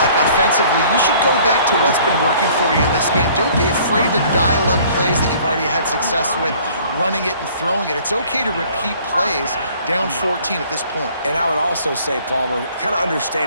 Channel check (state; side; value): inverted; both; correlation -0.55